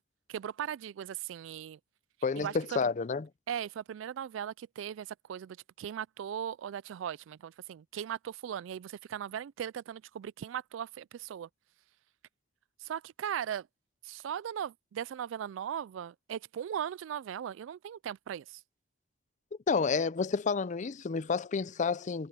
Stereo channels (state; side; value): normal; both; correlation -0.10